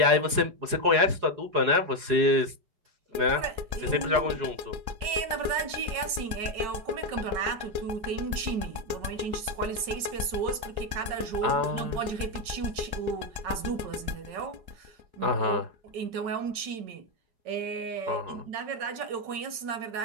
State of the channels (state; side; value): late; left; 5.4 ms